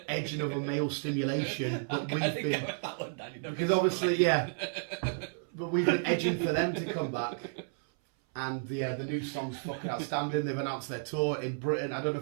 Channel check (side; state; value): left; silent; 56 dB below the other